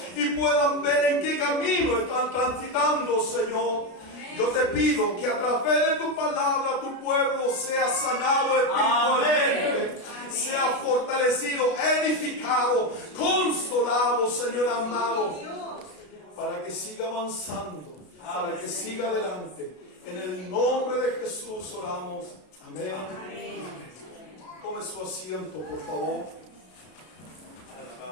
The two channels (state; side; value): late; right; 33 ms